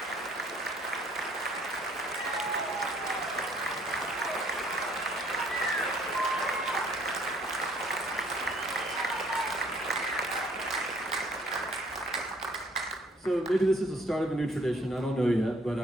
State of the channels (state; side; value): normal; both; correlation 0.61